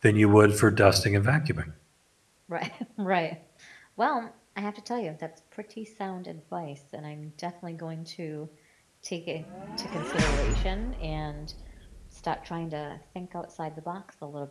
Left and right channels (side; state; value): both; identical; correlation 1.00